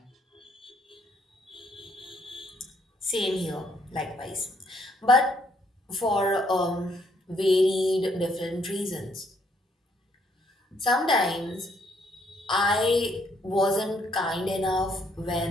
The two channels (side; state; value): both; normal; correlation 0.69